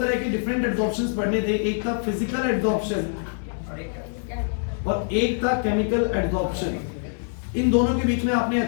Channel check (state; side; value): silent; right; 62 dB below the other